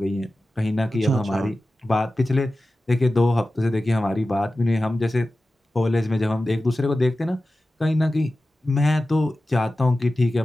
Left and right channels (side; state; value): both; normal; correlation 0.95